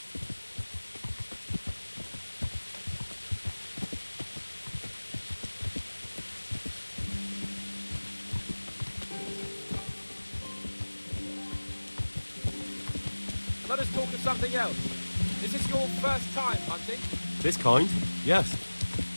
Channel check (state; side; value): inverted; both; correlation -1.00